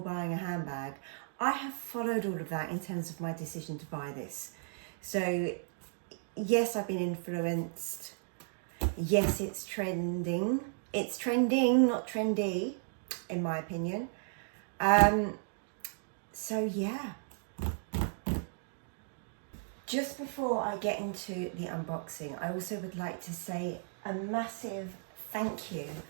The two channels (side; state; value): left; silent; digital silence